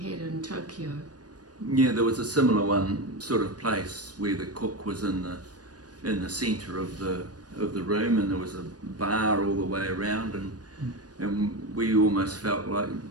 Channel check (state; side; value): late; left; 0.69 ms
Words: had in Tokyo? Yeah, there was a similar one sort of place where the cook was in the centre of the room, and there was a bar all the way around, and we almost felt like